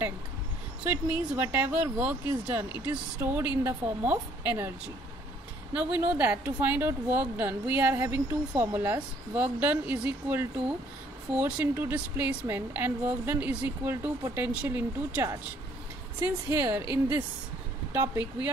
So it means whatever work is done, it is stored in the form of energy. Now we know that to find out work done, we are having two formulas. Work done is equal to force into displacement, and work done is equal to potential into charge. Since here in this topic we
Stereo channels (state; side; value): normal; both; correlation 0.63